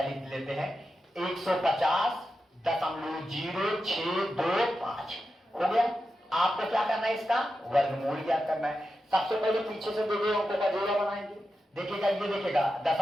लिख लेते हैं, 150.0625 हो गया। आपको क्या करना है? इसका वर्गमूल ज्ञात करना है। सबसे पहले पीछे से दो अंकों का जोड़ा बनाएंगे। देखिएगा, ये देखिएगा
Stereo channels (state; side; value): normal; both; correlation 0.90